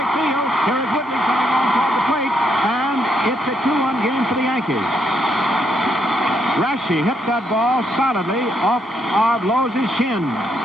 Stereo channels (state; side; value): normal; both; correlation 0.76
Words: field. Here is Woodley coming on toward the plate, and it's a 2-1 game for the Yankees. Raschi hit that ball solidly off of Lowe's shin.